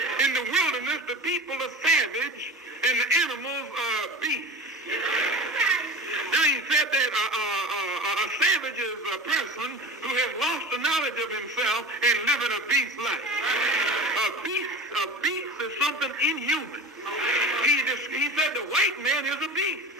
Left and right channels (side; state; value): both; normal; correlation 0.32